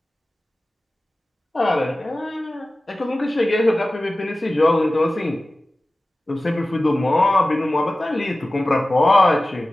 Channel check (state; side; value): normal; both; correlation 0.97